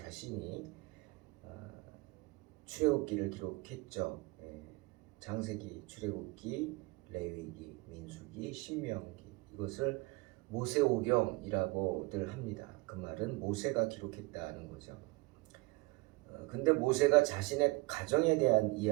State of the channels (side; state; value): left; quieter; 23.8 dB